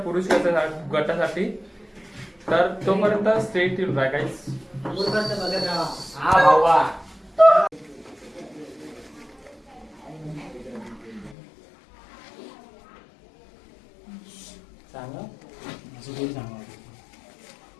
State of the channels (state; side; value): drops out; right; at 11.4 s